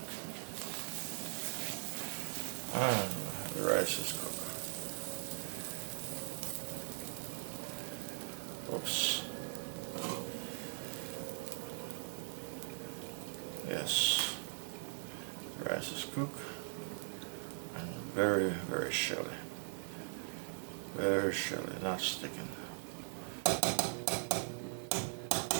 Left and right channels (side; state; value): left; silent; digital silence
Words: And the rice is cooked. Oops. Yes, the rice is cooked and very, very shelly. Very shelly, not sticking.